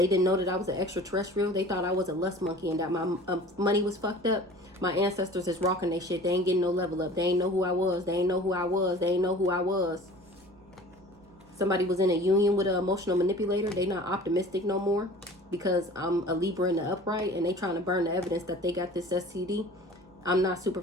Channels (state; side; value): noise; right; hum, 28 dB below the sound